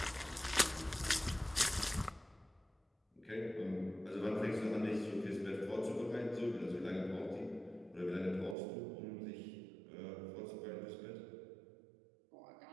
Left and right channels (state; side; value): drops out; left; at 8.6 s